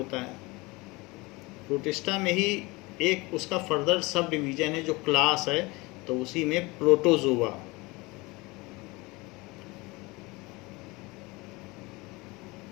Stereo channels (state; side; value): quieter; right; 24.0 dB